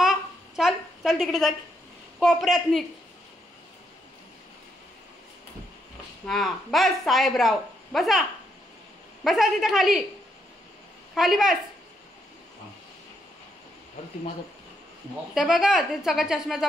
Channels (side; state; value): both; normal; correlation 0.77